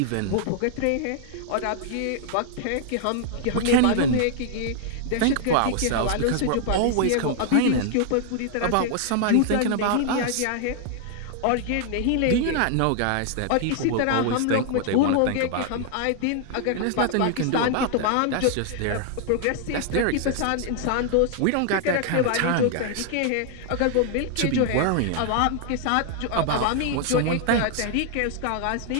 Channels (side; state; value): both; different; correlation 0.00